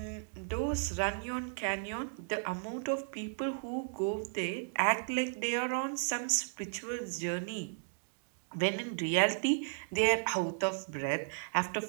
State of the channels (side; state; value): left; silent; digital silence